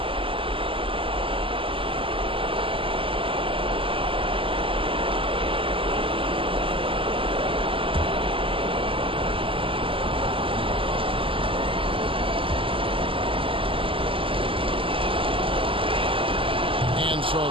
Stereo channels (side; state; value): left; late; 0.26 ms